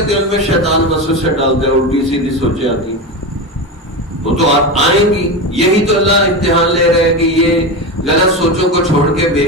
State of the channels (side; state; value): both; normal; correlation 0.19